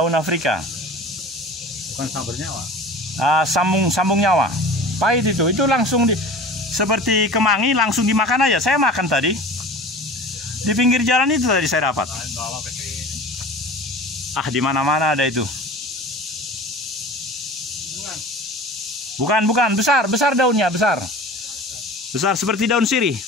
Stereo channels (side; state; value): both; normal; correlation 0.38